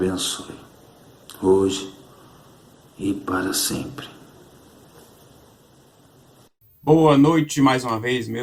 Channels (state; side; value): identical; both; correlation 1.00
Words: hoje e para sempre. Boa noite mais uma vez,